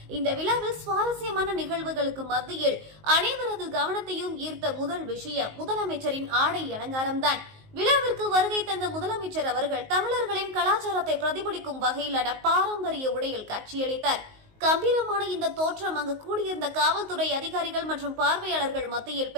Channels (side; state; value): left; late; 19 ms